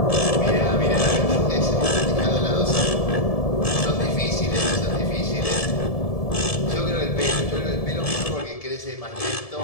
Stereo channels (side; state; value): right; late; 1.7 ms